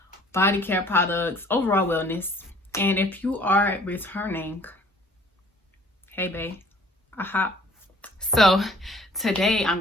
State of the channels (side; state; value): both; normal; correlation 0.55